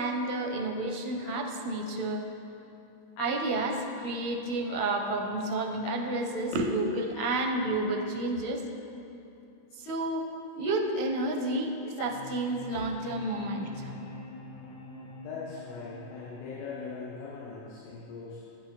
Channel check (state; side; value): late; right; 25 ms